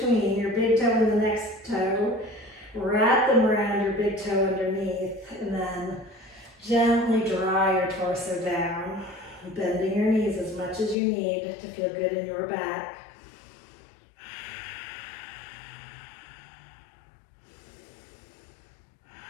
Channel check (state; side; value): drops out; right; at 11.0 s